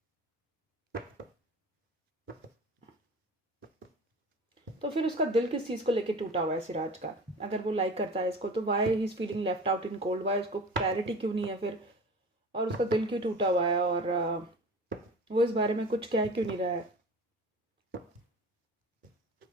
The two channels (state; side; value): normal; both; correlation 0.38